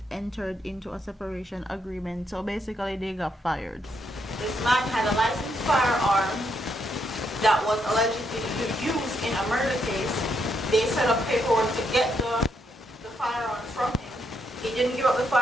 entered into a separation agreement. So basically they got fired. This man had a licensed firearm that was allegedly used in a murder case. They set up paperwork to get the firearm from him. He didn't give up the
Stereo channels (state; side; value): normal; both; correlation 0.77